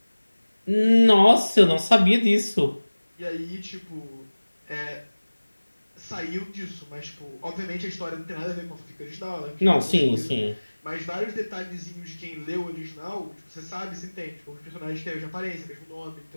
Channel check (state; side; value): inverted; both; correlation -1.00